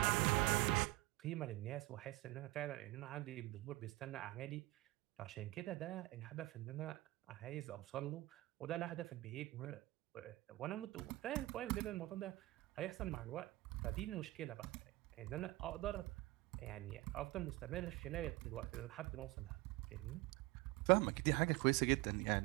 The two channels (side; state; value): left; quieter; 19.6 dB